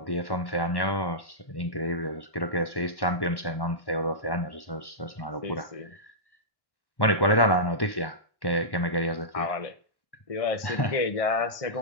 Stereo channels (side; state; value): right; late; 1.1 ms